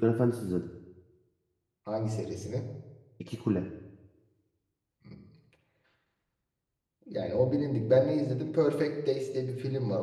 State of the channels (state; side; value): identical; both; correlation 1.00